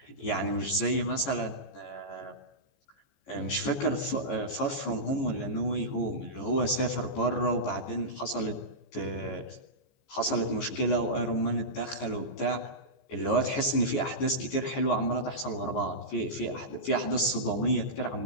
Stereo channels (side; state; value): right; late; 15 ms